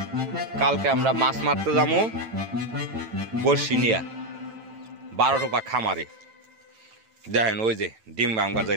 কালকে আমরা মাছ মারতে যাবো বর্ষি নিয়া 12 টোপা খামারে দেখেন ওই যে ডিম বাংবার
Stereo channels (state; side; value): late; left; 9.0 ms